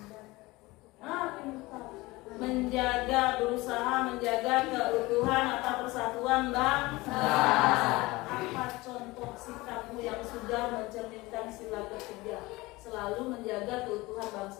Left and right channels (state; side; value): quieter; right; 21.2 dB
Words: Menjaga, berusaha menjaga keutuhan atau persatuan bangsa. Apa contoh sikapmu yang sudah mencerminkan sila ketiga? Selalu menjaga keutuhan